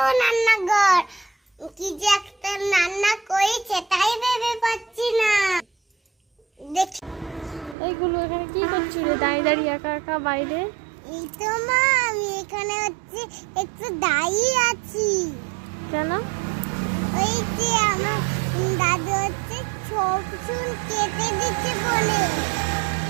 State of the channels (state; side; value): drops out; left; at 7.8 s